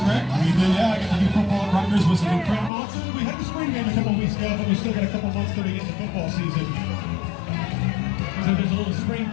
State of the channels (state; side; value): drops out; right; at 2.7 s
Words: right? We did, yeah. I got to do football at Rutgers, was incredible. We had the spring game a couple weeks ago, but we still got a couple months till we get into football season. So there's a little spring